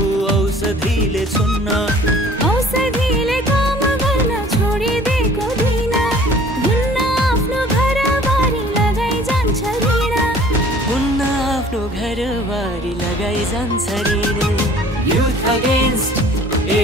औषधिले छुन्न। औषधिले काम गर्न छोडिदिएको दिन हुन्न आफ्नो घरबारी लगाइ जान्छ ऋण, हुन्न आफ्नो घरबारी लगाइ जान्छ ऋण। Youth Against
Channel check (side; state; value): both; normal; correlation 0.51